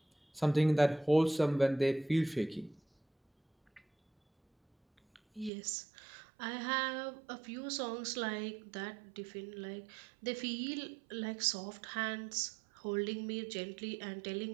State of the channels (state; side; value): drops out; left; at 5.5 s